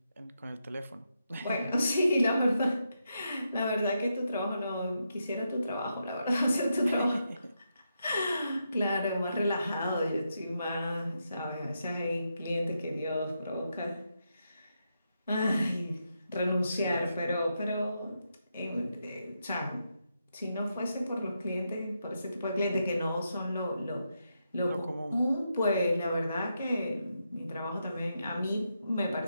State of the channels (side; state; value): both; inverted; correlation -0.83